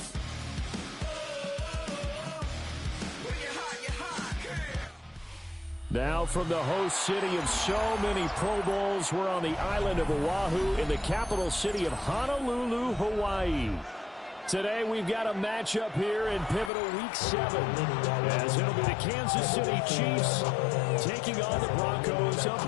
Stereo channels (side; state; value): right; drops out; at 16.7 s